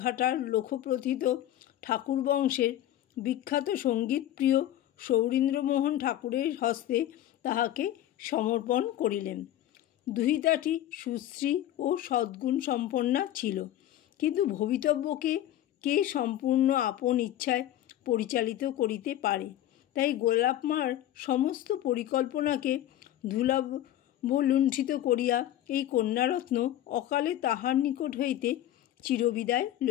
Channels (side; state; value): right; quieter; 12.6 dB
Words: ঘাটার লোকপ্রথিত ঠাকুর বংশের বিখ্যাত সঙ্গীতপ্রিয় সৌরীন্দ্রমোহন ঠাকুরের হস্তে তাহাকে সমর্পণ করিলেন। দুহিতাটি সুশ্রী ও সদ্গুণ সম্পন্না ছিল, কিন্তু ভবিতব্যকে কে সম্পূর্ণ আপন ইচ্ছায় পরিচালিত করিতে পারে? তাই গোলাপ মার সমস্ত পরিকল্পনাকে ধূলাবলুণ্ঠিত করিয়া এই কন্যারত্ন অকালে তাহার নিকট হইতে চিরবিদায়